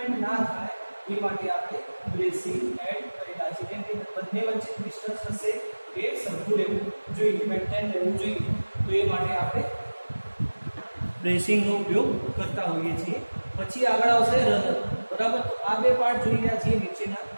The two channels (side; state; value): both; inverted; correlation -1.00